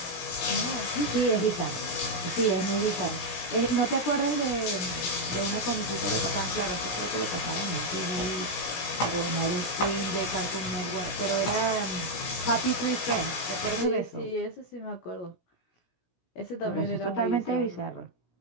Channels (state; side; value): late; right; 17 ms